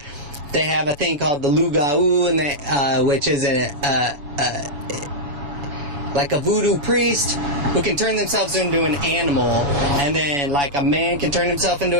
They have a thing called the Lugau, and which is like a voodoo priest who can turn themselves into an animal, and then like a man can turn himself into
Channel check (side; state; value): left; late; 7.0 ms